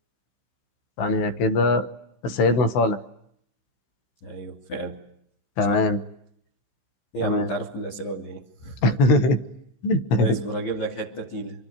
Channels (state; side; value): late; right; 15 ms